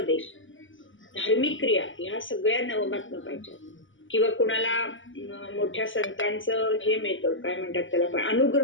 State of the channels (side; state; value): right; late; 0.57 ms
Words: धार्मिक क्रिया ह्या सगळ्या नवमातनं पाहिजे. किंवा कुणाला मोठ्या संतांचं हे मिळतं काय म्हणतात त्याला पण